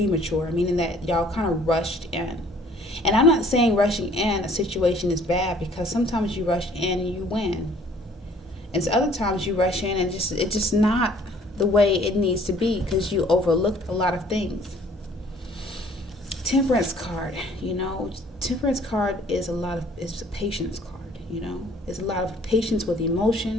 meaning that y'all kind of rushed in. And I'm not saying rushing in a situation is bad, because sometimes you rush in and you win. And so other times you rush in and it's just not the way it needs to be, because you overlooked a lot of things. Temperance card, you know, Temperance card is it's a patience card, you know. It's a lot of patience with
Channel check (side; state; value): both; normal; correlation 0.56